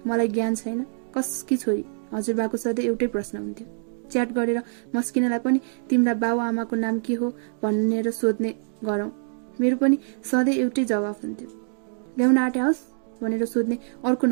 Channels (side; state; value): left; silent; digital silence